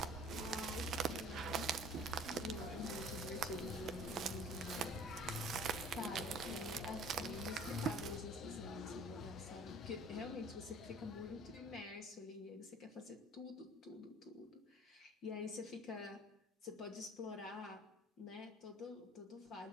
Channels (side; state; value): both; normal; correlation 0.50